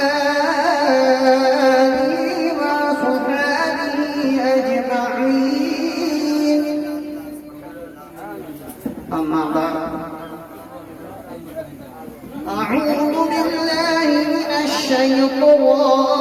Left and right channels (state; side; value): identical; both; correlation 1.00